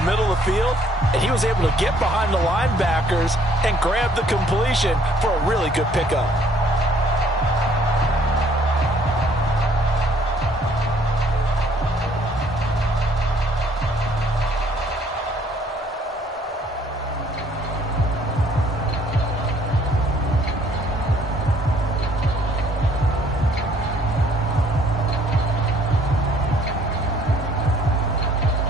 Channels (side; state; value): both; normal; correlation 0.62